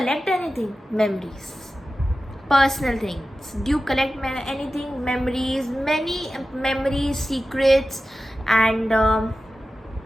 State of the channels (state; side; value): normal; both; correlation 0.94